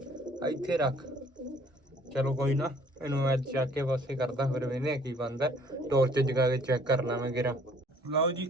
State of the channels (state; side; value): normal; both; correlation 0.58